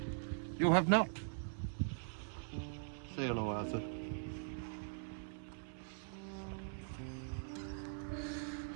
You have not. Say hello, Arthur.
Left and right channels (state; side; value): silent; left; digital silence